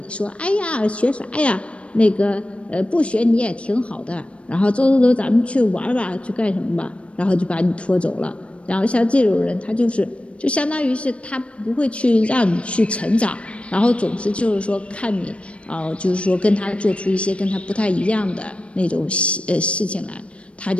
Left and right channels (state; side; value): late; right; 0.060 ms